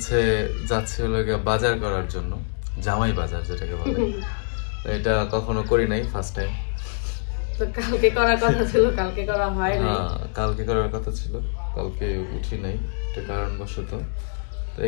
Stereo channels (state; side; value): silent; right; digital silence